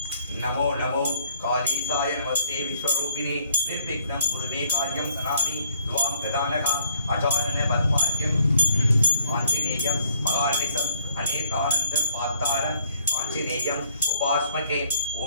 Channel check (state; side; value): inverted; both; correlation -0.67